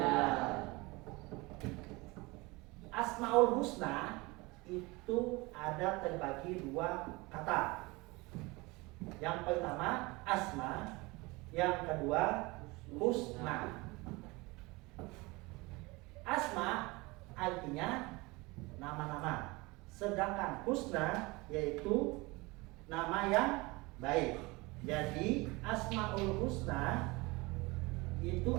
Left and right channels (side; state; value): left; quieter; 23.9 dB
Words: Asmaul Husna itu ada terbagi dua kata. Yang pertama asma, yang kedua husna. Asma artinya nama-nama, sedangkan husna yaitu nama yang baik. Jadi Asmaul Husna itu